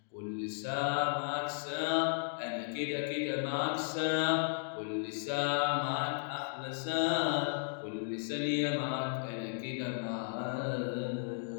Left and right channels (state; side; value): silent; right; digital silence